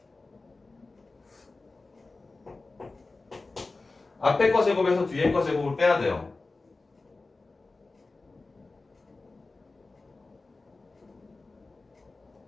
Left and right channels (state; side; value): quieter; right; 3.5 dB